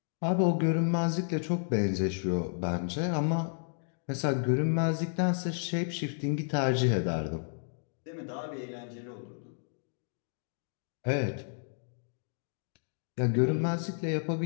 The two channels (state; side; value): silent; right; digital silence